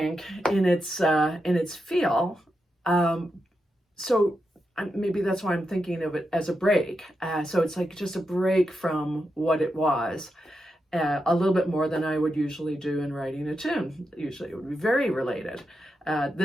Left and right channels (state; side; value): normal; both; correlation 0.87